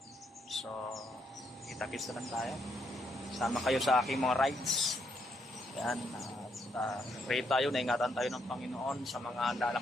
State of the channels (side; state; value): both; normal; correlation 0.76